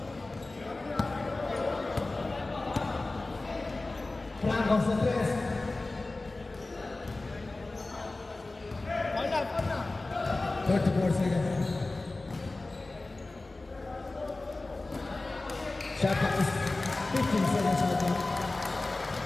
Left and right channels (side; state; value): right; quieter; 3.1 dB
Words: Franco sa 3.